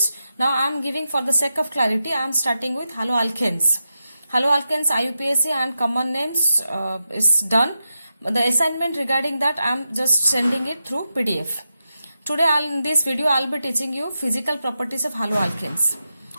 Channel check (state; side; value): inverted; both; correlation -0.88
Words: Now I am giving, for the sake of clarity, I am starting with haloalkanes. Haloalkanes, IUPAC and common names is done. The assignment regarding that I am just sending it through PDF. Today in this video I will be teaching you physical properties of haloalkanes.